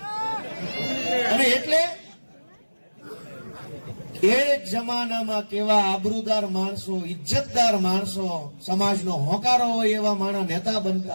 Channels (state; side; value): inverted; both; correlation -1.00